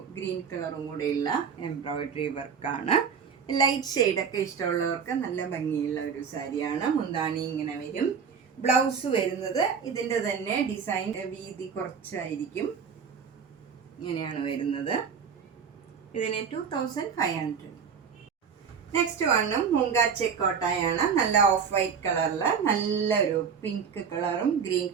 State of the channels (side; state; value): left; quieter; 6.5 dB